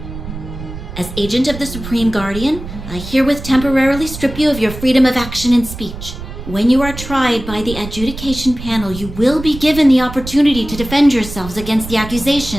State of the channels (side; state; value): right; noise; rumble, 11 dB below the sound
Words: As agent of the Supreme Guardian, I herewith temporarily strip you of your freedom of action and speech. When you are tried by the adjudication panel, you will be given the opportunity to defend yourselves against the